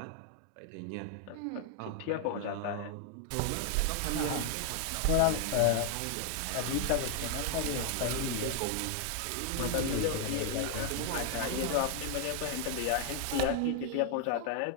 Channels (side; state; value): both; different; correlation 0.00